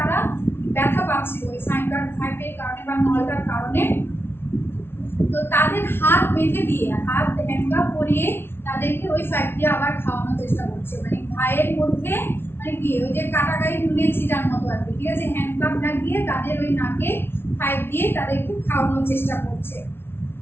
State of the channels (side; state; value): right; late; 0.11 ms